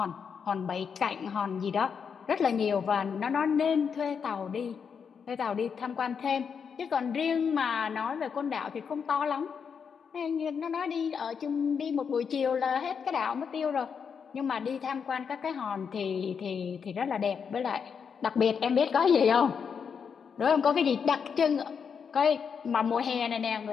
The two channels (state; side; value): quieter; right; 6.5 dB